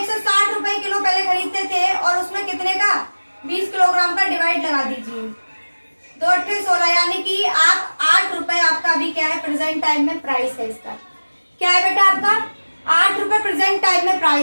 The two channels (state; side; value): inverted; both; correlation -1.00